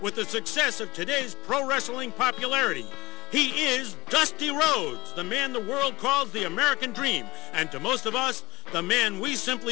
the success of today's pro wrestling popularity. He is Dusty Rhodes, the man the world calls the American Dream, and to most of us, the man we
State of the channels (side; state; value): right; quieter; 20.6 dB